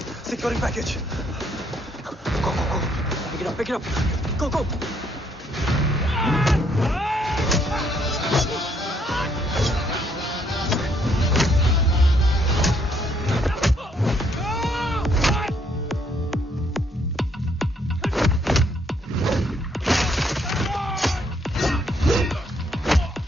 Securing package. Go, go, go. Pick it up, pick it up. Go, go.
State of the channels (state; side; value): normal; both; correlation 0.69